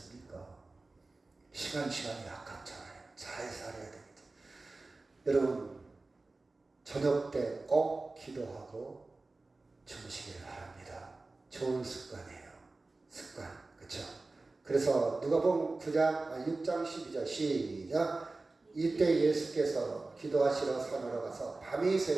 시간이 아깝잖아요. 잘 살아야 됩니다. 여러분 저녁 때 꼭 기도하고 주무시길 바랍니다. 좋은 습관이에요. 습관. 그렇죠? 그래서 누가복음 6장 12절 시작. 이때 예수께서 기도하시러 산으로 가서 밤이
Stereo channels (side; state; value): left; quieter; 3.3 dB